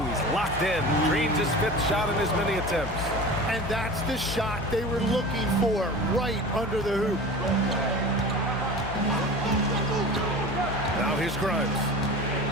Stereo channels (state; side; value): noise; left; hum, 10 dB below the sound